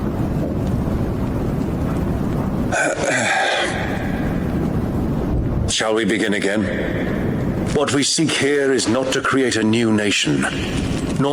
Shall we begin again? What we seek here is not to create a new nation,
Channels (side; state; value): both; identical; correlation 1.00